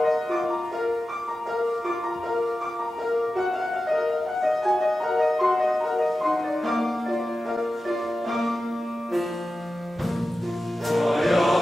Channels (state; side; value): normal; both; correlation 0.93